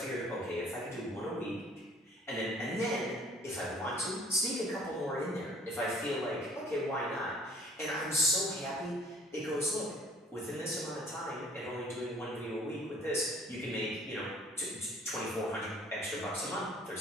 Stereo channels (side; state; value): both; normal; correlation 0.55